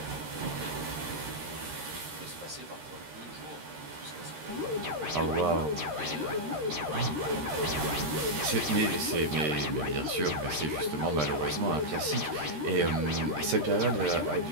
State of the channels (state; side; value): late; left; 13 ms